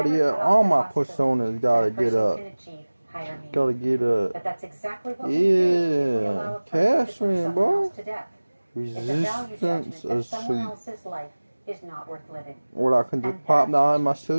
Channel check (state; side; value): inverted; both; correlation -1.00